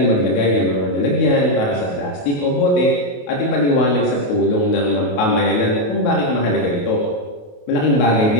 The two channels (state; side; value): late; right; 28 ms